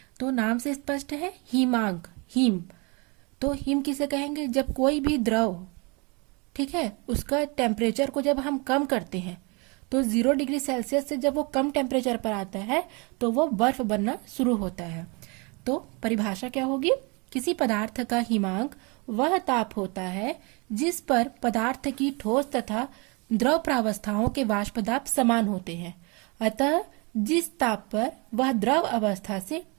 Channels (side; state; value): left; quieter; 30.2 dB